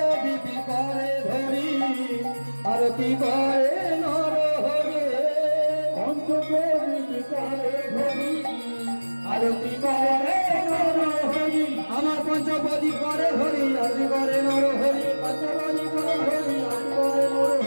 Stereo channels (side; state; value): both; inverted; correlation -1.00